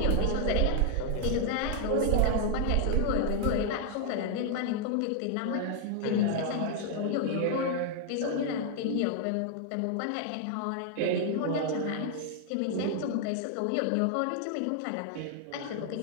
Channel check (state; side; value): different; both; correlation 0.00